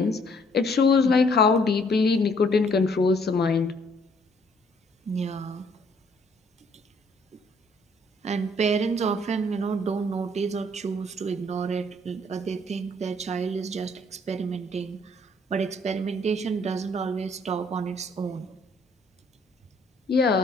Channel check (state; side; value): normal; both; correlation 0.63